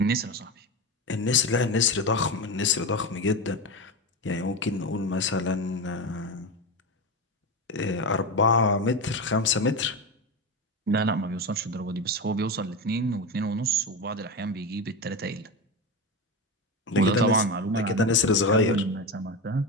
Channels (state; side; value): normal; both; correlation 0.19